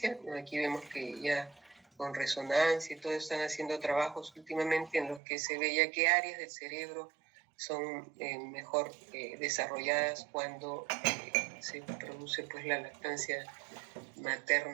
Aquí vemos que ya con resonancia y todo están haciendo trabajos últimamente en los que se ve ya qué áreas del cerebro son mejor desarrolladas cuando se produce pues la lactancia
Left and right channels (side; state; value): left; drops out; at 5.2 s